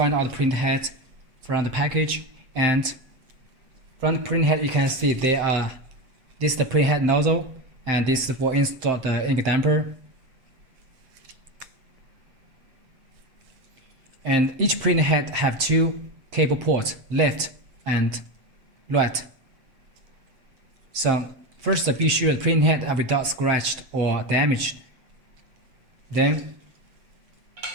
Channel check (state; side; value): late; left; 7.7 ms